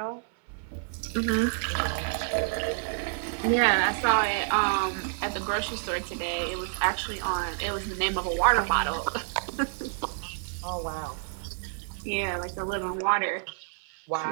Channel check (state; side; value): silent; left; 57 dB below the other